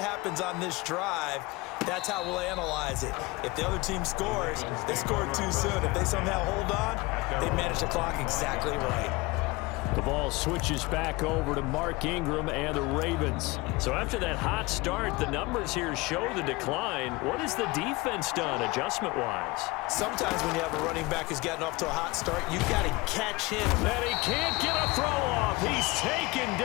on this drive, that's how we'll analyze it. If the other team scores, they scored too soon. If they somehow hold on, they manage the clock exactly right. The ball switches back over to Mark Ingram and the Ravens. So after that hot start, the numbers here show the decline. What has the defense done adjustment-wise? Sometimes when you have a running back who's gotten off to a hot start, you've got to catch him. And he can't get a throw off. He's taken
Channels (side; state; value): right; quieter; 22.8 dB